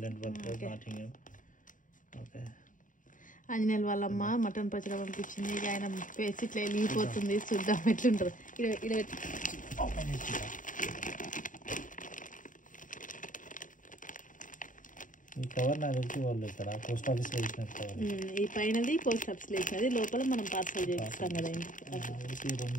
నాటింగం. ఓకే. ఆంజనేయులు వాళ్ళమ్మ మటన్ పచ్చడి పంపించింది. ఇక ఆయన పేసి ఇట్లా వెళ్ళిపోతుంది. చూద్దాం ఎట్లుంటుంది. ఈ కవర్ నాకు తెలిసి వాళ్ళు ఇక్కడ పోస్ట్ ఆఫీస్ లో వేసినట్టు కవర్. ఈ పైనది పోస్ట్ ఆఫీస్ లో వేసినది, లోపల మనం పార్సల్ చేపిస్తాం కదా.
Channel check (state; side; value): late; right; 0.38 ms